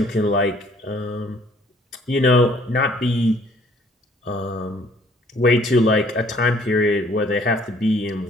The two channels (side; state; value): both; normal; correlation 0.60